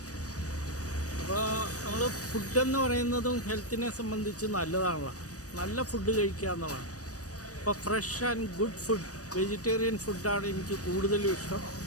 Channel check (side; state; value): right; late; 0.66 ms